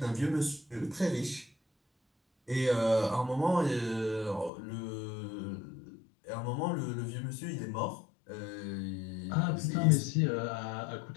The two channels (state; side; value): drops out; right; at 4.5 s